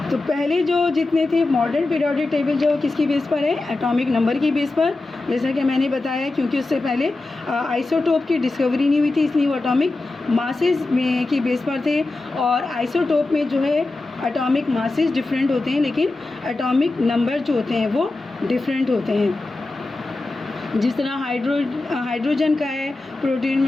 तो पहले जो जितने थे मॉडर्न पीरियोडिक टेबल जो किसकी बेस पर है, एटॉमिक नंबर की बेस पर, जैसा कि मैंने बताया, क्योंकि उससे पहले आइसोटोप की डिस्कवरी नहीं हुई थी इसलिए वो एटॉमिक मासेस में की बेस पर थे। और आइसोटोप में जो है एटॉमिक मासेस डिफरेंट होते हैं लेकिन एटॉमिक नंबर जो होते हैं वो डिफरेंट होते हैं। जिस तरह हाइड्रोजन का है, प्रोटीन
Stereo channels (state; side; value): quieter; right; 3.2 dB